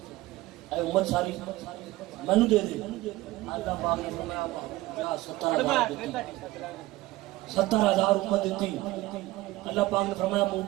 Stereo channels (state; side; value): quieter; left; 18.3 dB